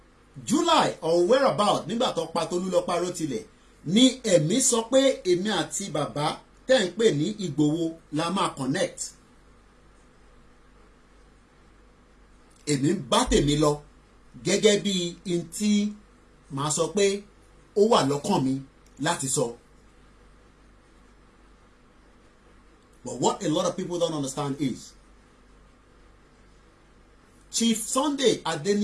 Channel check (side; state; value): both; identical; correlation 1.00